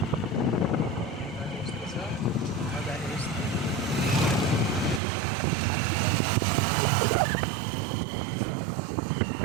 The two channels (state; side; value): drops out; left; at 5.0 s